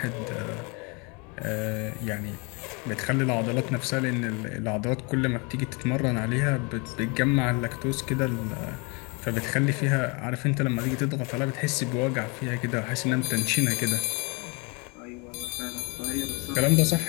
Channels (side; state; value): right; quieter; 30.7 dB